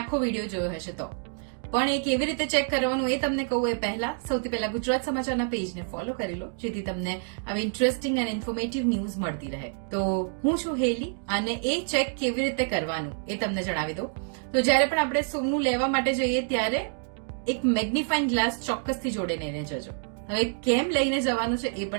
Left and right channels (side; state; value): left; silent; 59 dB below the other